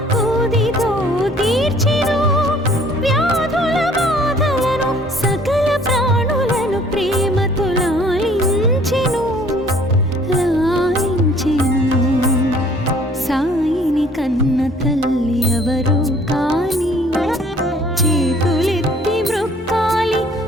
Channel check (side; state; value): both; normal; correlation 0.56